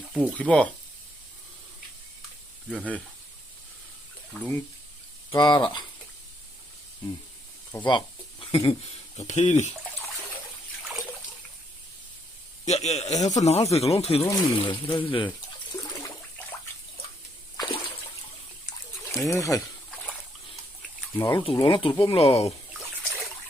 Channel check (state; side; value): normal; both; correlation 0.73